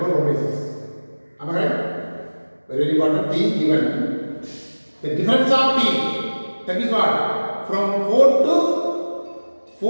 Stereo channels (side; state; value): both; inverted; correlation -1.00